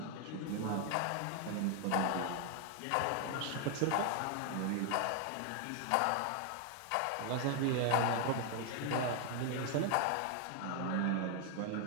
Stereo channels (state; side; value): different; both; correlation 0.00